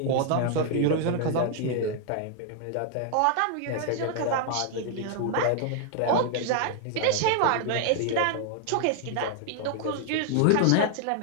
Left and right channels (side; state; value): both; different; correlation 0.00